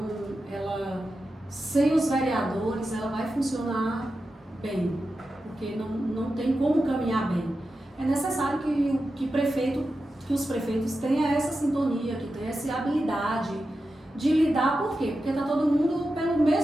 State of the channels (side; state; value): both; normal; correlation 0.91